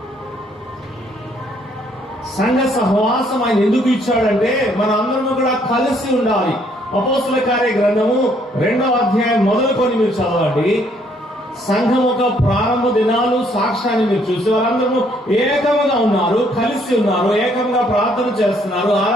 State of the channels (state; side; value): normal; both; correlation 0.67